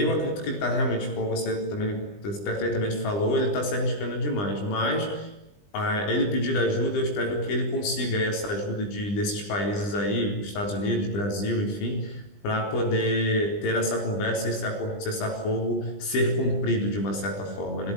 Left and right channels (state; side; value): late; right; 20 ms